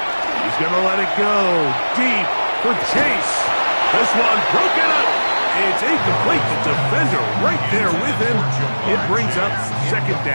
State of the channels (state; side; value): inverted; both; correlation -1.00